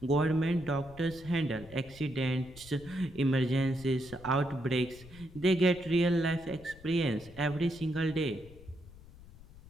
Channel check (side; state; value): left; noise; rumble, 19 dB below the sound